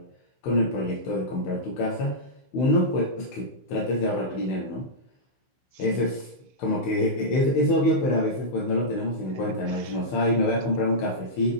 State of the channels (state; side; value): late; right; 15 ms